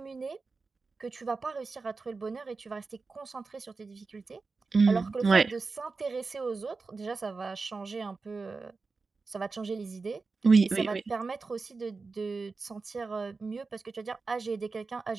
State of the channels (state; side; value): quieter; left; 4.2 dB